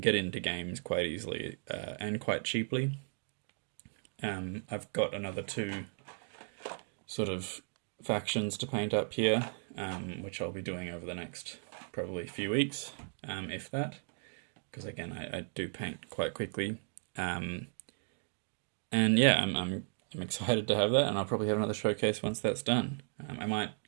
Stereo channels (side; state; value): left; silent; digital silence